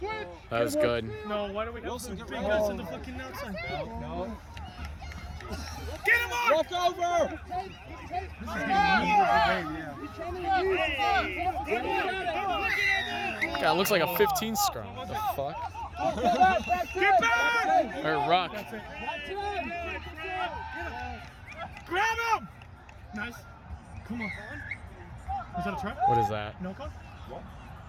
That was good. No, why do we have Wilson, to get bring rid us of in the fucking outside? No. Get him on! Walk over! God, it looks like a 15 scrum. What the fuck? Get back! Or ruck. Grab him! Nice. Come on. Is that a try? What is that? No call?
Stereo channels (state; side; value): identical; both; correlation 1.00